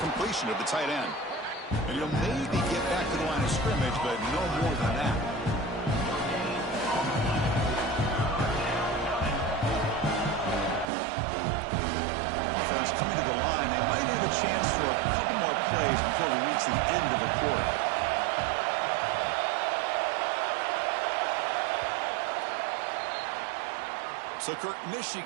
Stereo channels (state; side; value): drops out; left; at 10.9 s